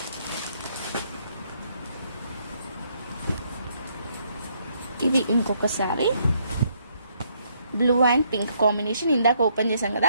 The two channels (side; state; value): both; inverted; correlation -0.71